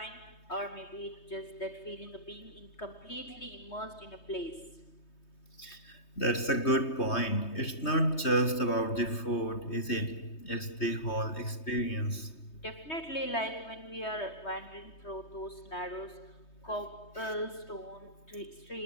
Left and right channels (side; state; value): right; late; 3.2 ms